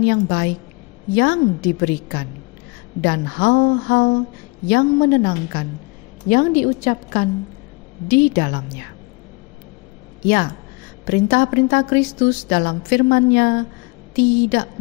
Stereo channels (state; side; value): quieter; right; 27.9 dB